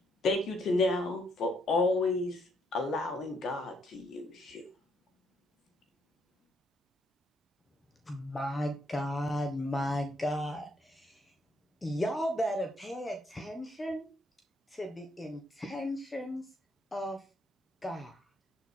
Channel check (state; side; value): normal; both; correlation 0.72